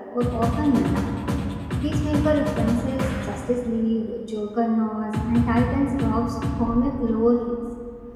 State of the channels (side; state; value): both; identical; correlation 1.00